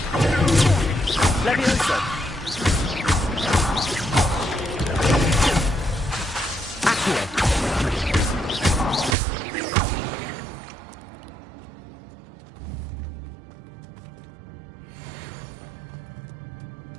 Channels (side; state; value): left; drops out; at 9.2 s